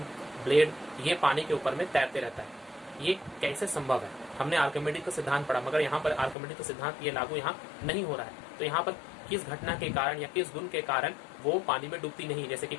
ब्लेड, ये पानी के ऊपर में तैरते रहता है। ये कैसे संभव है? हमने आर्किमिडीज का सिद्धांत पढ़ा, मगर यहाँ पर आर्किमिडीज का सिद्धांत ये लागू यहाँ नहीं हो रहा है। तो यहाँ पर किस घटना के कारण या किस गुण के कारण वो पानी में डूबती नहीं, जैसे कि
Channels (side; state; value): right; drops out; at 6.4 s